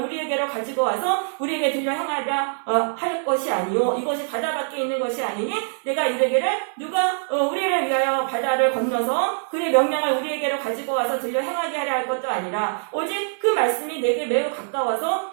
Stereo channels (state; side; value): silent; left; 59 dB below the other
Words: 우리에게로 가지고 와서 우리에게 들려 행하려 할 것이 아니요 이것이 바다 밖에 있는 것이 아니니 내가 이르기를 누가 우리를 위하여 바다를 건너서 그의 명령을 우리에게로 가지고 와서 들려 행하게 하려 할 것도 아니라 오직 그 말씀이 내게 매우 가까워서